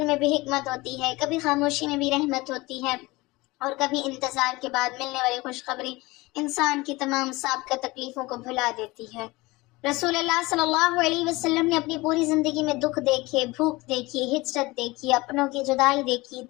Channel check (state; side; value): quieter; right; 21.8 dB